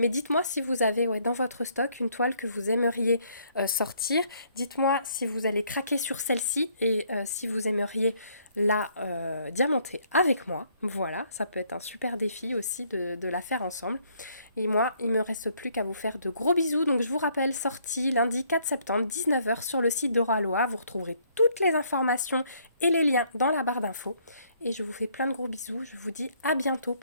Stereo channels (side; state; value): both; inverted; correlation -0.67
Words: dites-moi si vous avez dans votre stock une toile que vous aimeriez sortir. Dites-moi si vous allez craquer sur celle-ci et si vous aimeriez la diamanter avec moi. Voilà, ça peut être un super défi aussi de la faire ensemble. Et moi, il me reste plus qu'à vous faire de gros bisous. Donc je vous rappelle, sortie lundi 4 septembre, 19h sur le site d'Oraloa. Vous retrouverez toutes les informations et les liens dans la barre d'infos. Et je vous fais plein de gros bisous. Je vous dis à bientôt